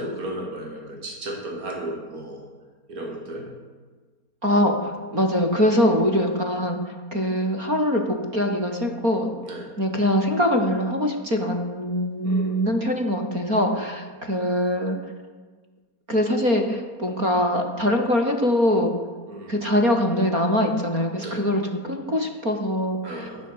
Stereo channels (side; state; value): left; late; 4.3 ms